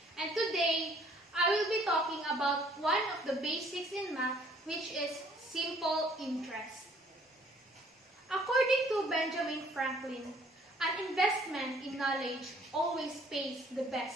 And today, I will be talking about one of the basics in math, which is simple interest. According to Benjamin Franklin, an investment in knowledge always pays the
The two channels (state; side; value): normal; both; correlation 0.60